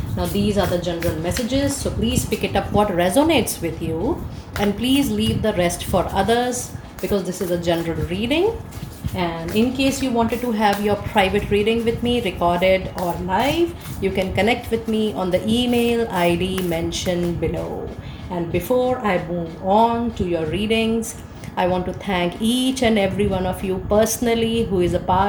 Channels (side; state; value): both; identical; correlation 1.00